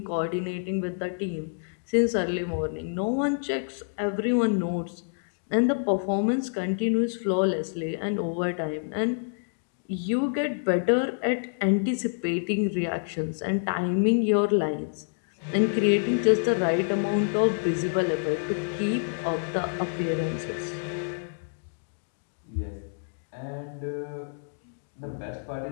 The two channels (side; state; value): right; silent; digital silence